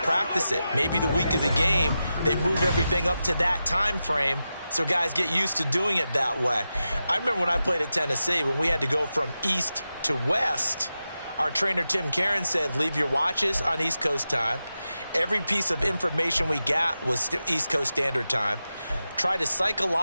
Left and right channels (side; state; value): both; inverted; correlation -0.91